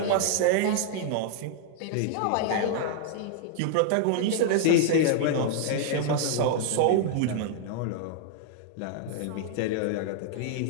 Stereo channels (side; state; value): both; different; correlation -0.01